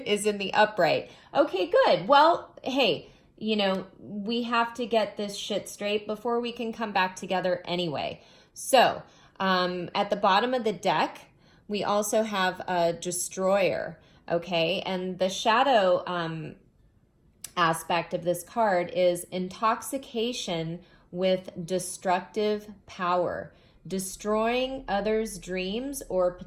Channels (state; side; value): identical; both; correlation 1.00